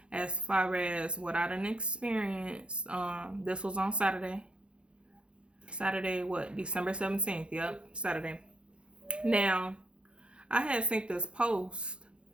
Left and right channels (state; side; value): late; left; 0.057 ms